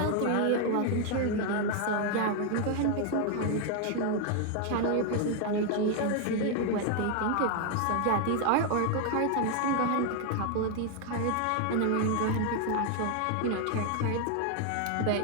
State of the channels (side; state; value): both; different; correlation 0.01